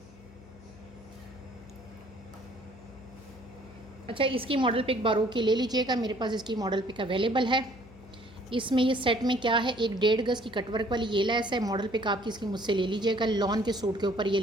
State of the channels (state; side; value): noise; left; hum, 21 dB below the sound